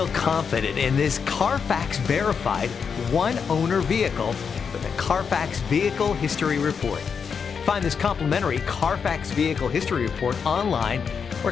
confident in this Carfax verified one-owner vehicle with a Carfax Vehicle History Report. Find this complimentary Carfax Vehicle History Report online or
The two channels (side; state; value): right; quieter; 6.3 dB